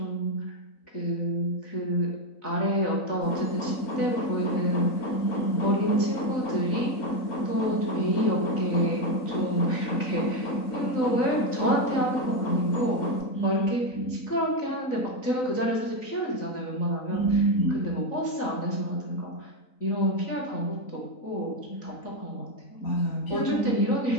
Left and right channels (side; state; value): right; late; 3.9 ms